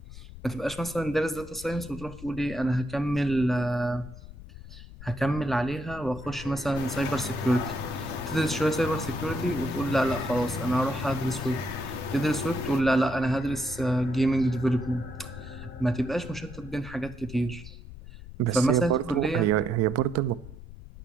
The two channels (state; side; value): noise; left; rumble, 15 dB below the sound